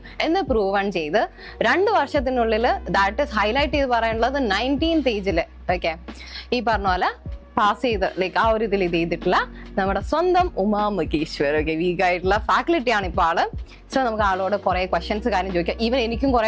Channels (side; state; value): both; identical; correlation 1.00